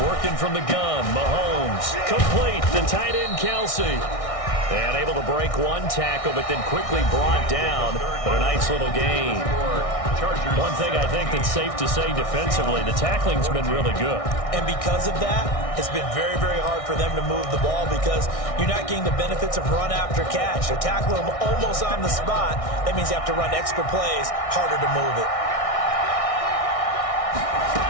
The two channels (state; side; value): late; right; 1.6 ms